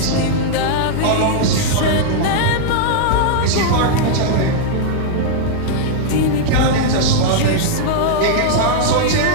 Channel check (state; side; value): different; both; correlation -0.01